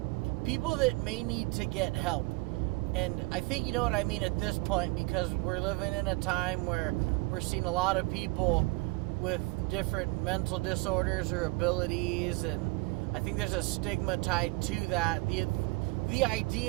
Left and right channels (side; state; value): left; quieter; 24.3 dB